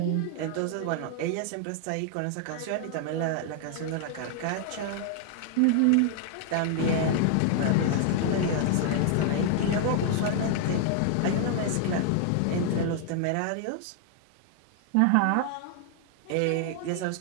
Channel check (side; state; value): both; different; correlation 0.00